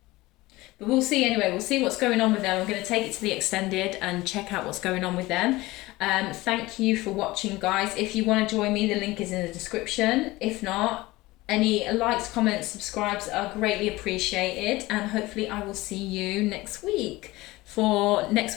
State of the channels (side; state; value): right; quieter; 19.8 dB